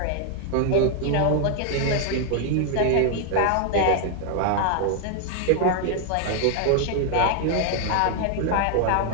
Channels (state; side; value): different; both; correlation 0.00